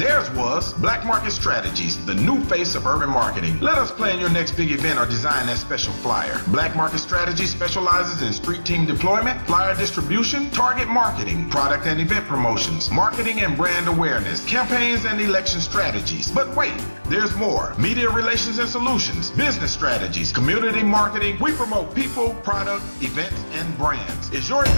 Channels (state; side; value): inverted; both; correlation -1.00